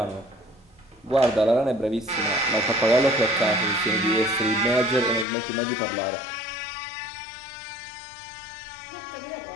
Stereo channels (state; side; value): drops out; right; at 5.2 s